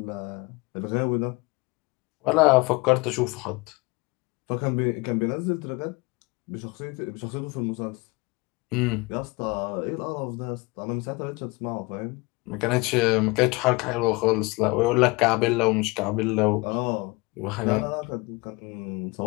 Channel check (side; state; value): right; quieter; 25.4 dB